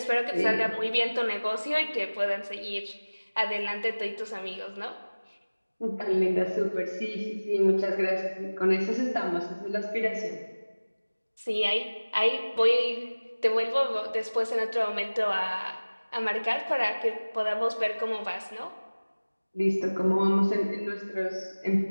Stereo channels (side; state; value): both; inverted; correlation -1.00